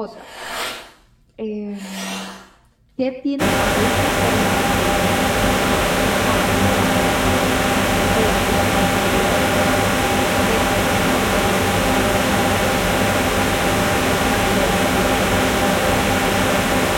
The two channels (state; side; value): identical; both; correlation 1.00